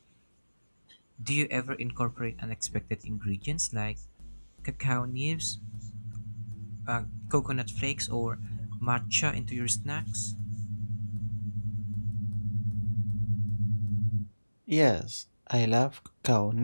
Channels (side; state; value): both; inverted; correlation -1.00